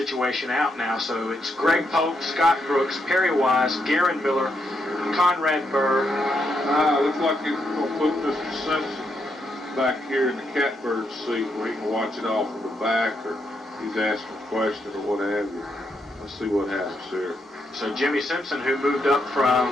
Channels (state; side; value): normal; both; correlation 0.80